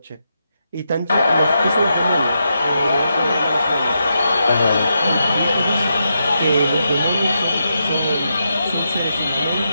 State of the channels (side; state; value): both; inverted; correlation -0.84